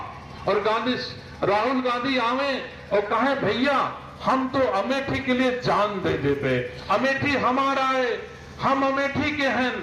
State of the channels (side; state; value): both; identical; correlation 1.00